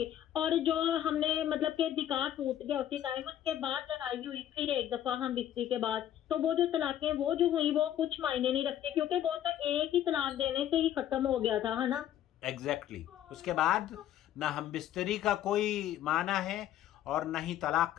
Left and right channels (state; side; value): quieter; right; 11.4 dB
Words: और जो हमने मतलब कि निकाह टूट गया उसी टाइम, उसके बाद लड़ाई हुई फिर एक दफा हम बिस्ती के बाद, तो वो जो तलाकें वो जो हुई वो कुछ मायने नहीं रखते, क्योंकि वो तो एक ही तलाक देने से ही खत्म हो गया था, है ना। एग्जैक्टली उसके बाद ना हम बिस्तरी का कोई माना है और ना ही तलाक